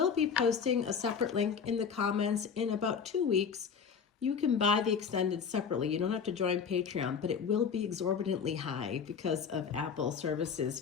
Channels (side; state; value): right; quieter; 6.5 dB